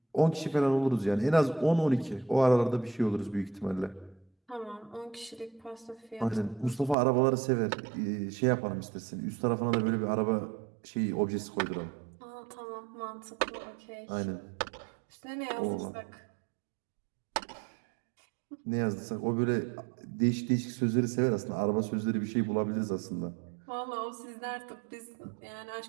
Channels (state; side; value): drops out; left; at 7.0 s